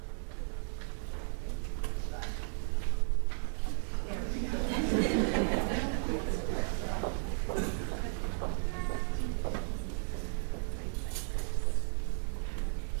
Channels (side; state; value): left; silent; digital silence